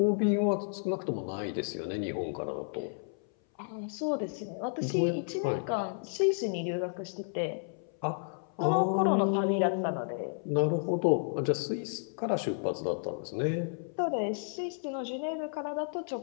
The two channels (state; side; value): silent; right; 56 dB below the other